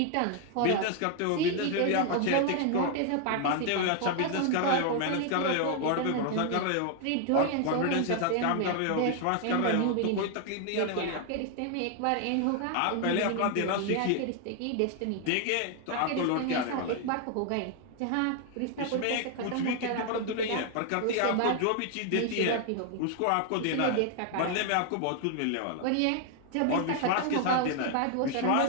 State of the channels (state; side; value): different; both; correlation 0.00